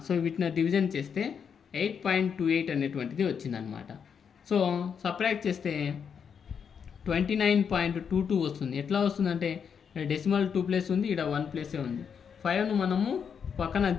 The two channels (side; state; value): right; quieter; 7.0 dB